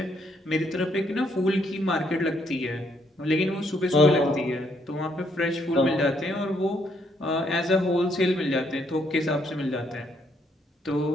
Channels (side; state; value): both; normal; correlation 0.72